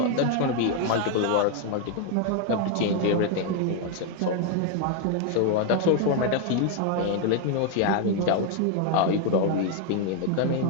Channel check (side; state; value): both; different; correlation 0.01